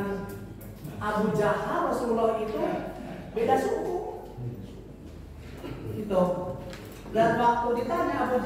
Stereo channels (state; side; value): identical; both; correlation 1.00